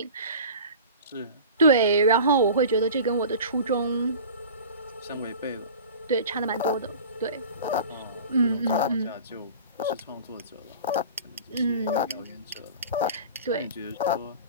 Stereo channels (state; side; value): inverted; both; correlation -0.39